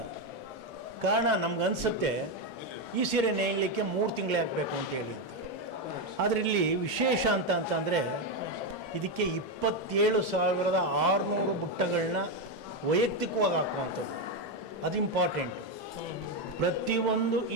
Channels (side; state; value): both; normal; correlation 0.07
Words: ಕಾರಣ ನಮಗನ್ಸುತ್ತೆ ಈ ಸೀರೆ ನೇಯಲಿಕ್ಕೆ 3 ತಿಂಗಳೇ ಹಾಕಬೇಕು ಅಂತೇಳಿ ಅಂತ. ಆದರೆ ಇಲ್ಲಿ ವಿಶೇಷ ಅಂತಂದರೆ ಇದಕ್ಕೆ 27,600 ಬುಟ್ಟಗಳನ್ನ ವೈಯಕ್ತಿಕವಾಗಿ ಹಾಕುವಂಥದ್ದು, ಅದು ಇಂಪಾರ್ಟೆಂಟು. ಪ್ರತಿಯೊಂದು ಈ